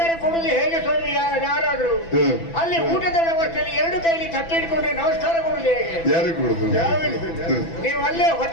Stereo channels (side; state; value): right; late; 6.0 ms